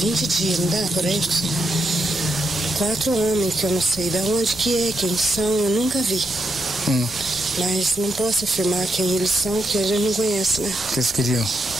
dias, não dá por aí? 4 homens que eu não sei de onde que é, quem são, eu nunca vi. Mas não posso afirmar quem eles são, porque a gente não conhece, né? O que eles queriam?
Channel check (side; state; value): both; normal; correlation 0.82